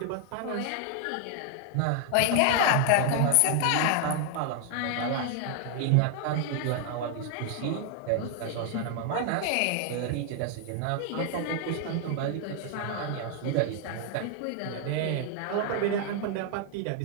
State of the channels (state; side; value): different; both; correlation 0.00